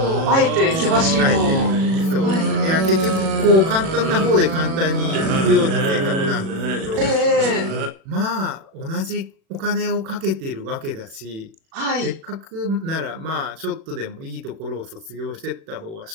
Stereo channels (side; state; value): left; late; 37 ms